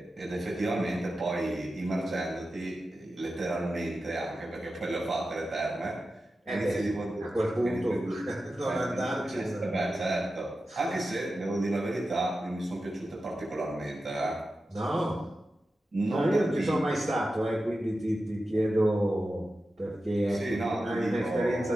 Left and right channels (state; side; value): normal; both; correlation 0.92